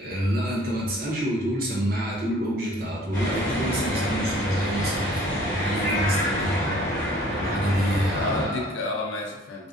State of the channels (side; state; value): both; normal; correlation 0.54